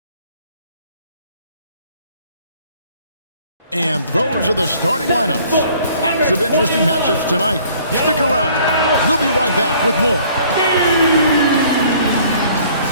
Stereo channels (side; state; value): both; inverted; correlation -0.57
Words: And those are the starting lineups. Lots of interesting matchups tonight. Stick around. We'll be right back with more.